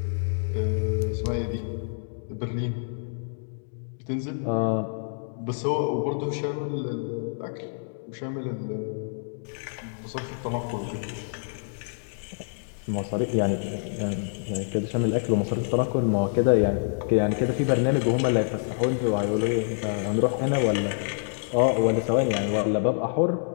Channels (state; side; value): silent; right; digital silence